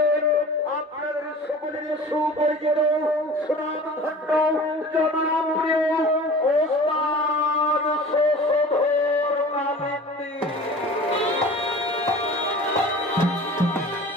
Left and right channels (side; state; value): both; normal; correlation 0.41